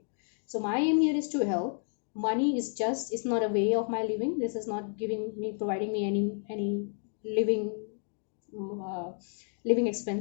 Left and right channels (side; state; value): right; silent; 57 dB below the other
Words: So my aim here is to help. Money is just, it's not a way of my living. This is not providing me any living, uh, living